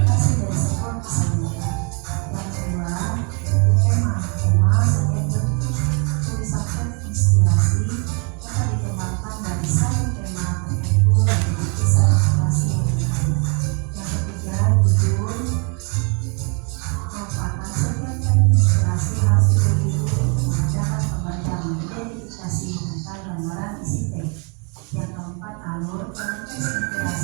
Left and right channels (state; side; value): quieter; left; 35.9 dB